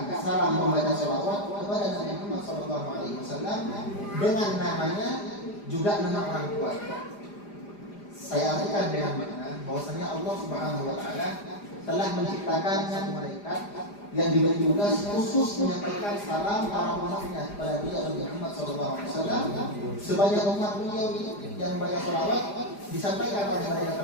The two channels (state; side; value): late; right; 4.9 ms